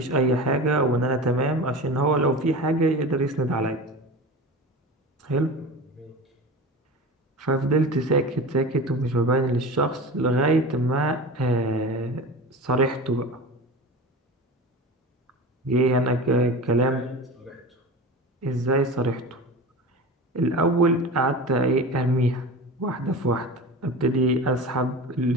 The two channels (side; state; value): both; normal; correlation 0.31